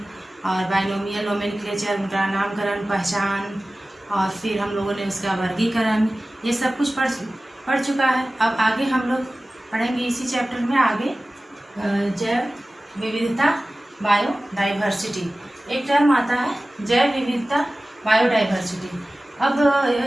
और बाइनोमियल नोमेनक्लेचर, उनका नामकरण, पहचान, और फिर हम लोगों ने उसका वर्गीकरण, ये सब कुछ पढ़ चुका है। अब आगे हम लोग पढ़ेंगे इसी चैप्टर में आगे जैव विविधता, बायोडाइवर्सिटी। एक टर्म आता है जैव विविधता, बायोडाइवर्सिटी। अब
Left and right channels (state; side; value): normal; both; correlation 0.97